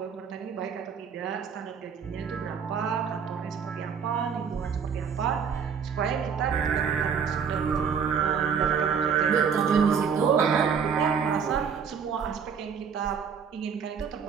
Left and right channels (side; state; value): left; quieter; 6.7 dB